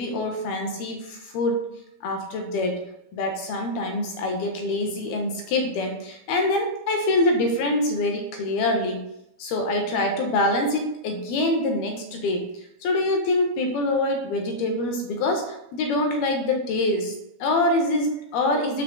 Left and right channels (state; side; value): late; right; 12 ms